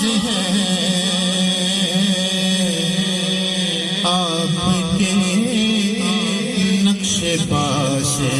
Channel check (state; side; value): identical; both; correlation 1.00